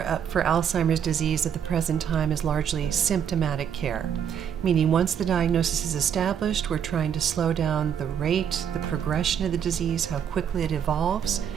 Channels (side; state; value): left; quieter; 8.3 dB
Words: for Alzheimer's disease at the present time is largely symptomatic care, meaning once the diagnosis is established, we're trying to slow down the rate, the progression of the disease, how quickly it evolves.